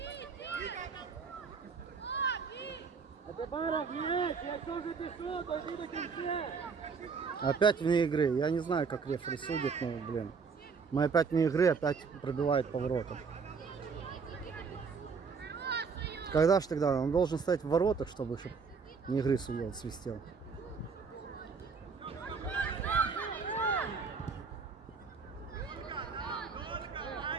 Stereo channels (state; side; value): quieter; left; 5.4 dB